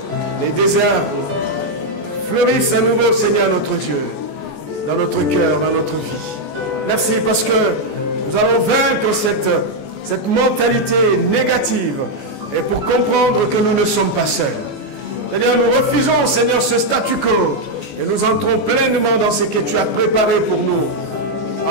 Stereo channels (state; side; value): late; right; 14 ms